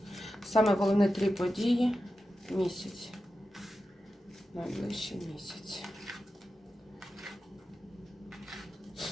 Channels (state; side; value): normal; both; correlation 0.91